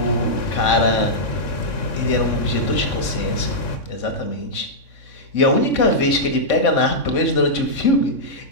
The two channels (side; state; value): right; late; 3.6 ms